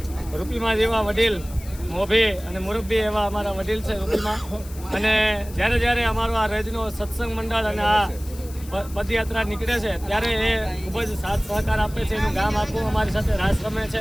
રૂપીમાં જેવા વડીલ મોભી અને મુરબ્બી એવા અમારા વડીલ છે રૂપીમાં. અને જ્યારે અમારો આ રજનો સત્સંગ મંડળ અને આ પદયાત્રા નીકળે છે ત્યારે એ ખૂબ જ સાથ સહકાર આપે છે. એનું ગામ આખું અમારી સાથે રાસ રમે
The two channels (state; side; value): noise; left; hiss, 18 dB below the sound